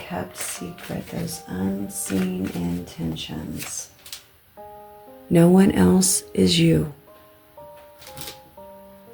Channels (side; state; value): both; identical; correlation 1.00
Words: secret? Those unseen intentions. No one else is you.